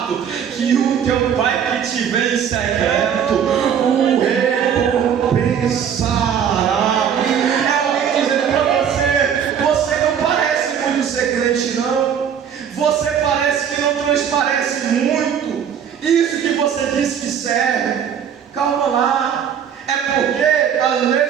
que o teu pai que te vê em secreto o recompensará. É alguém dizendo para você: você não parece muito ser crente, não. Você parece que não transparece muito isso que você diz que serve. Calma lá. É porque às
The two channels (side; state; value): left; quieter; 8.2 dB